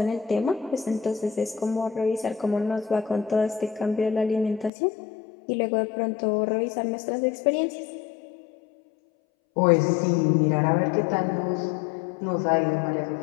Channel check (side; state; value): right; drops out; at 4.7 s